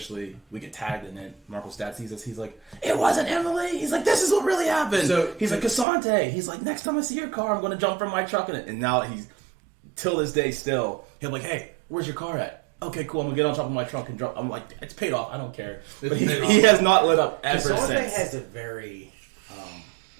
we get tagged in it. Marco's dad sees us. He's like, "It wasn't Emily." He's like, "This is what really happened." So- he's like, "Casante." He's like, "Next time I see your car, I'm going to jump from my truck in it." And now he's till this day still. He'll be like, "Hey, where's your car at?" Okay, cool. I'm gonna get on top of my truck and drop. I'm like, it's paid off. I don't care. But he has not lit up ever Casante since. has a very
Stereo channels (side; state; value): left; drops out; at 5.9 s